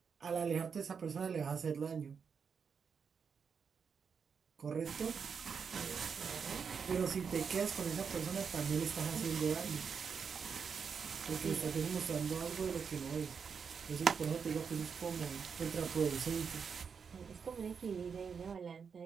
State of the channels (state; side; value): quieter; left; 6.2 dB